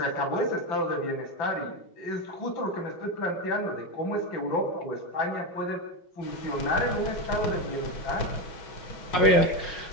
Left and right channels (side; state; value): right; late; 5.5 ms